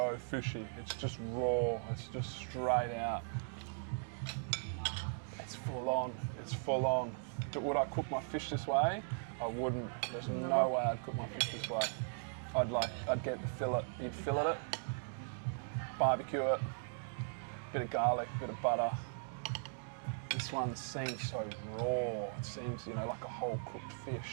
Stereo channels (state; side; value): silent; left; digital silence